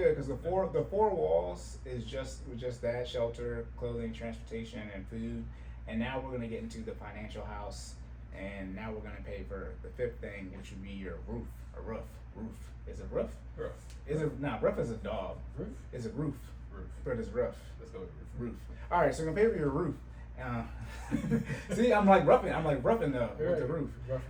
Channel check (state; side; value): identical; both; correlation 1.00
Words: because the four walls is just that: shelter, clothing, transportation, and food. And now we're gonna get into the financial house, and now we're gonna pay for the fifth thing, which would be your roof. A roof. Is it roof? Roof. Is it no? Roof is a dog. Roof. Is it roof? Roof. But it's roof. Let's go with Roof. All right, so we're gonna pay for your roof. See, I'm like roughing though with the roof.